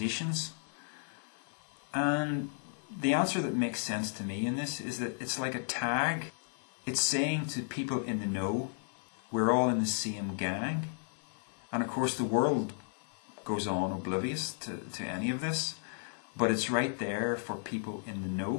And the answer that makes sense to me in this is that it's like a tag. It's saying to people in the know, we're all in the same gang. And of course the world goes on oblivious to any of this, but it's right there for people in the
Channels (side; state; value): right; silent; digital silence